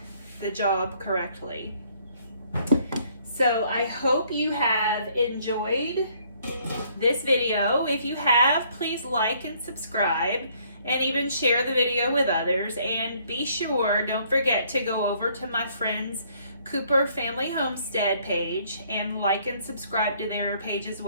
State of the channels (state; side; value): inverted; both; correlation -0.64